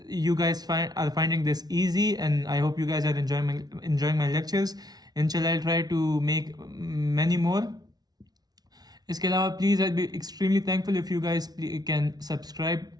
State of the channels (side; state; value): left; late; 0.19 ms